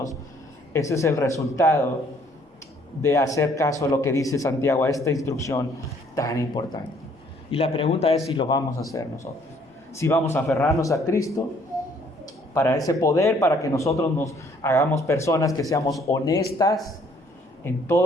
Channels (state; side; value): normal; both; correlation 0.62